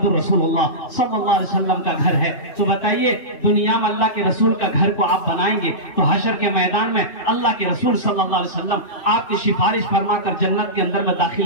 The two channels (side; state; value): right; late; 2.6 ms